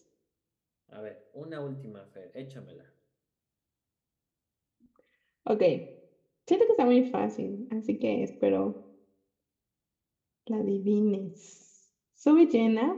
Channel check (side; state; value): both; identical; correlation 1.00